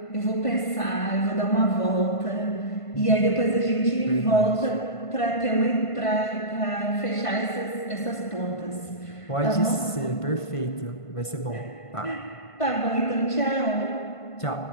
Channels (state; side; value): late; right; 1.5 ms